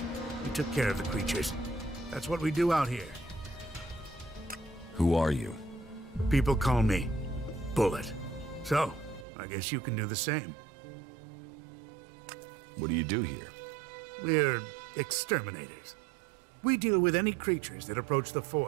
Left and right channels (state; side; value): drops out; left; at 9.2 s